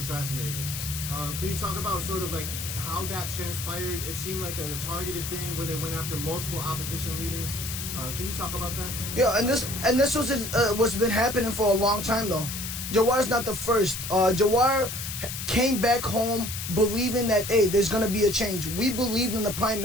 Can you talk about sort of like how that transpired? It seemed like a targeted thing where they went after multiple opposition leaders. Can you talk about that? Yeah, and this was what's been happening for a long time though. Jawar's not the first. Jawar came back home believing that, hey, there's going to be a change. We believed in the prime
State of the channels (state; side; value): noise; left; hiss, 6 dB below the sound